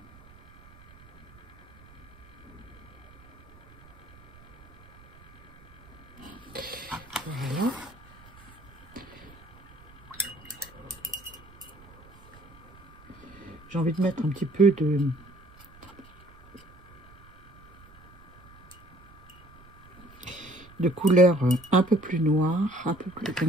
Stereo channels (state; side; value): noise; right; rumble, 23 dB below the sound